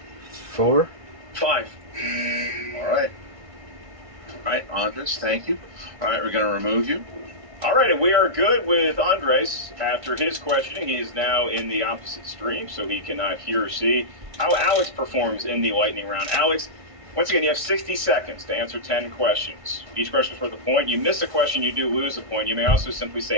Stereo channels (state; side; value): late; left; 1.6 ms